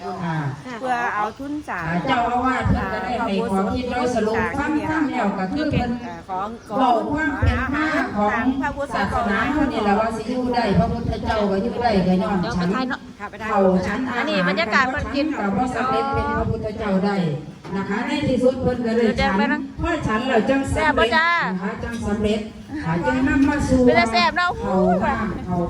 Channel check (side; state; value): both; identical; correlation 1.00